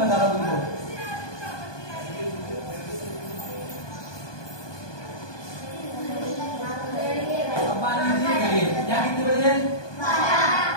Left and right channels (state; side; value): late; right; 1.2 ms